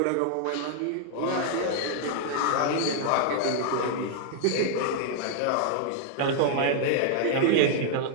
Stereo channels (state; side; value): different; both; correlation -0.01